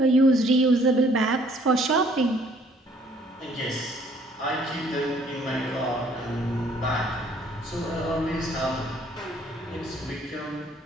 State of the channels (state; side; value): normal; both; correlation 0.60